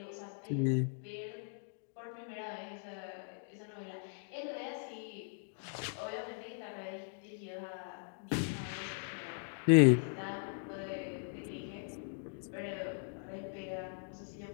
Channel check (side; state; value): right; silent; digital silence